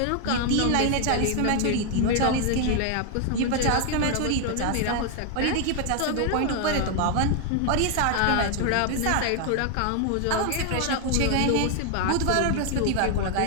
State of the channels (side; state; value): both; different; correlation 0.00